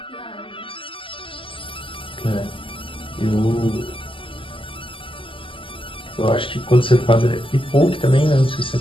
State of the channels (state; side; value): late; right; 0.25 ms